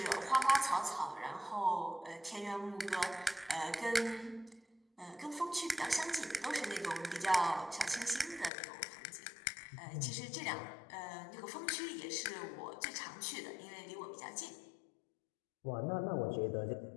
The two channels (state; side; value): drops out; right; at 8.5 s